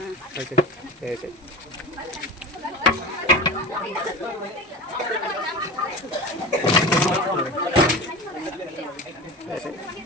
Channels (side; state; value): both; normal; correlation 0.32